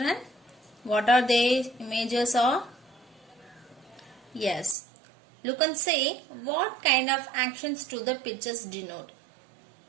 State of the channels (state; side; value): drops out; left; at 4.8 s